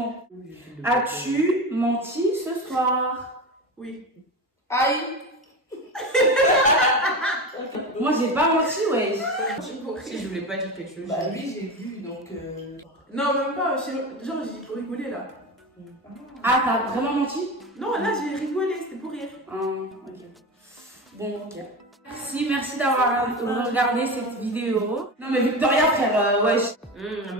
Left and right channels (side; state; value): both; normal; correlation 0.24